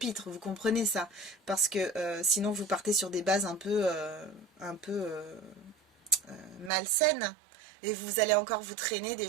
Vous comprenez ça? Parce que sinon vous partez sur des bases un peu malsaines. Et vous allez encore vous traîner des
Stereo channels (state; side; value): drops out; left; at 6.7 s